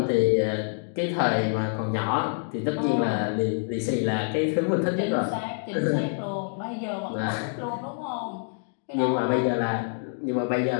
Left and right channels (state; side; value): silent; right; digital silence